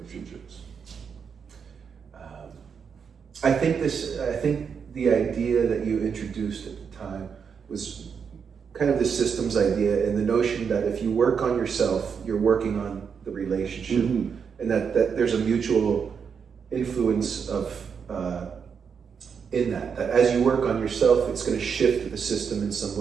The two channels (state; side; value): quieter; left; 6.5 dB